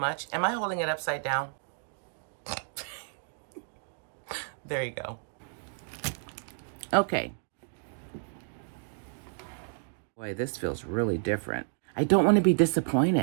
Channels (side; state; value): left; silent; digital silence